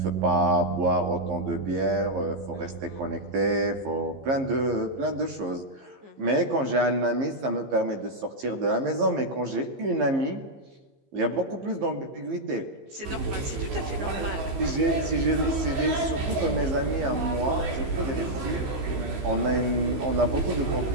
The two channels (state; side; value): late; left; 15 ms